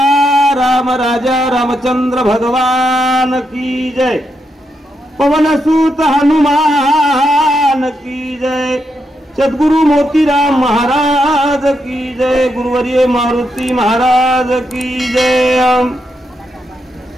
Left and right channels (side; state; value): both; normal; correlation 0.82